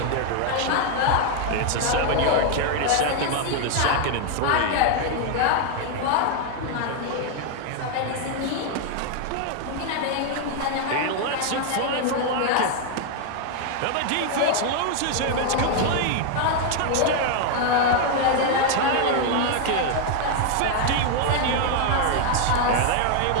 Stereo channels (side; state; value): both; different; correlation 0.00